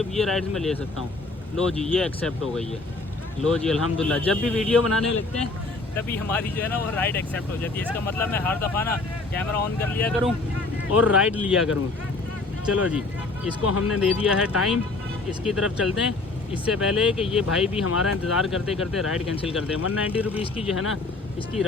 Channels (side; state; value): right; quieter; 3.4 dB